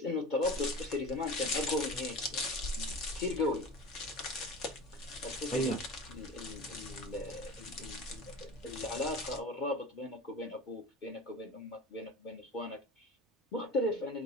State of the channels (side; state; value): both; normal; correlation 0.34